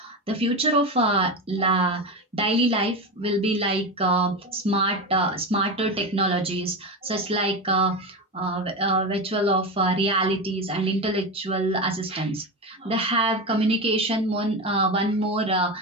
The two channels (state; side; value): normal; both; correlation 0.19